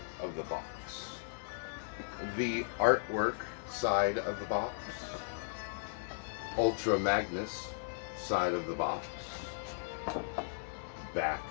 of the box, the artwork side of the box, Ultra Magnus side of the box, back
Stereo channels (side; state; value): right; silent; digital silence